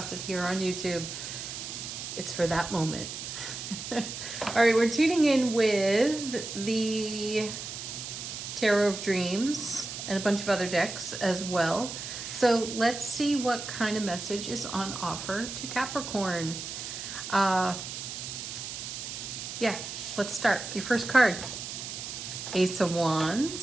it here on YouTube, it's for that moment. All right, we're tuning in with the Tarot of Dreams and a bunch of other decks as well. So let's see what kind of message is on offer to Capricorn. Yeah, let's start. Your first card, Ace of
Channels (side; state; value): right; noise; hiss, 7 dB below the sound